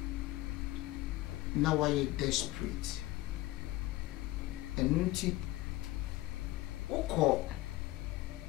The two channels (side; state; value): right; quieter; 18.0 dB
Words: Now why you desperate? Enunti oko